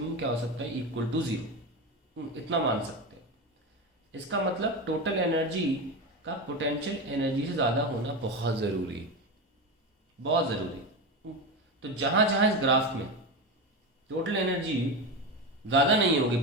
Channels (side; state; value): both; normal; correlation 0.19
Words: क्या हो सकता है, इक्वल टू जीरो। इतना मान सकते हैं। इसका मतलब टोटल एनर्जी का पोटेंशियल एनर्जी से ज़्यादा होना बहुत ज़रूरी है, बहुत ज़रूरी। तो जहाँ जहाँ इस ग्राफ में टोटल एनर्जी ज़्यादा नहीं होगी